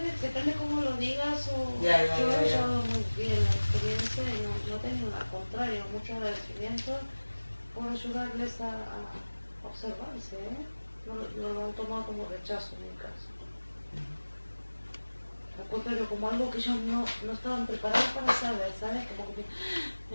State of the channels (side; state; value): both; inverted; correlation -1.00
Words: depende cómo lo digas o Ya, yo lo he ya. llevado muy bien la experiencia y no he tenido al contrario, mucho agradecimiento por ayudarles a observarse, ¿eh? No lo han tomado como rechazo en mi caso. Al contrario, como algo que ellos no estaban preparados para saber, ¿sabes? Como que